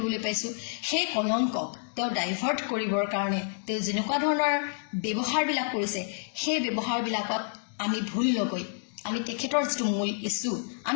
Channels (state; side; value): silent; right; 59 dB below the other